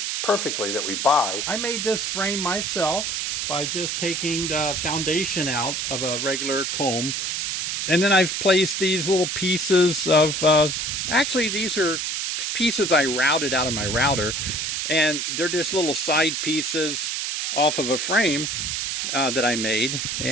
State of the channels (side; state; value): right; noise; hiss, 1 dB below the sound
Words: perfectly that we buy. I made this frame myself by just taking the foundation out of a regular comb. And then I've placed these little pieces of, actually these are pieces I routed out of my router. And they're just little side pieces off of a frame that I made,